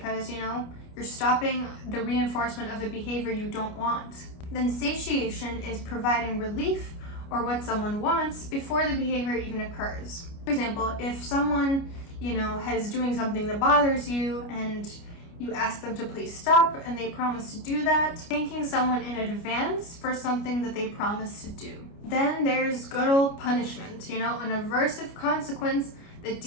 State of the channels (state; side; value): late; right; 29 ms